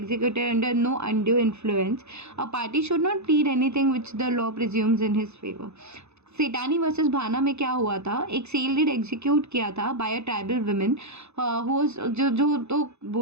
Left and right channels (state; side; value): late; left; 0.81 ms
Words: under no undue influence. A party should not plead anything which the law presumes in his favor. Sethani versus Bhana में क्या हुआ था? एक sale deed execute किया था bye a tribal women जो तो